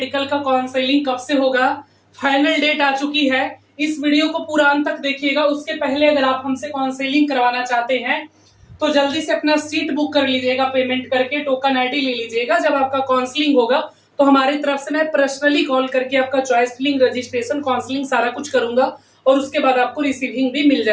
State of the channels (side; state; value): both; identical; correlation 1.00